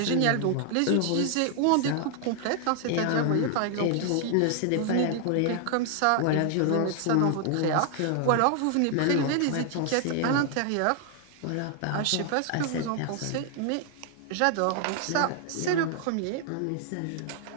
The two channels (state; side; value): different; both; correlation 0.00